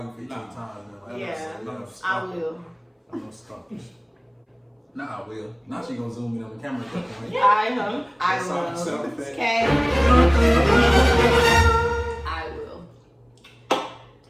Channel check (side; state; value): both; identical; correlation 1.00